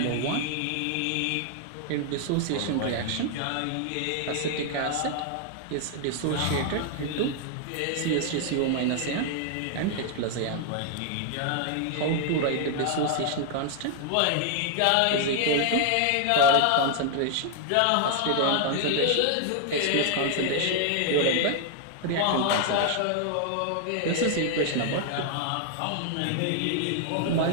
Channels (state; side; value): different; both; correlation 0.00